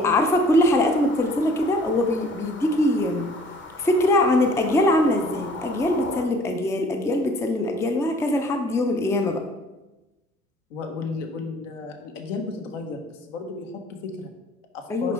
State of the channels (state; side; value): normal; both; correlation 0.53